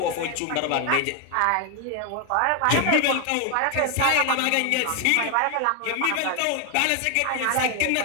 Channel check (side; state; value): both; different; correlation 0.00